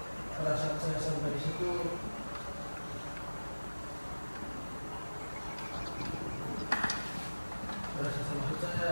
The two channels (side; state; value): both; inverted; correlation -1.00